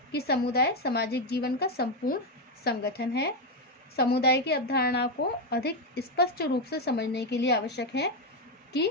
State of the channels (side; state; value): both; normal; correlation 0.06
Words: कि समुदाय सामाजिक जीवन का संपूर्ण संगठन है। समुदाय की अवधारणा को अधिक स्पष्ट रूप से समझने के लिए आवश्यक है कि